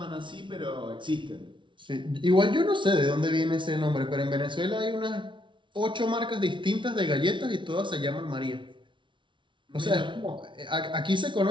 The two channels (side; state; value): left; late; 0.24 ms